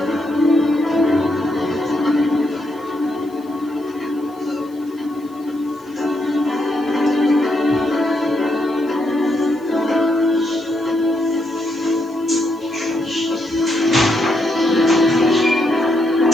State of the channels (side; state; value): left; noise; hiss, 29 dB below the sound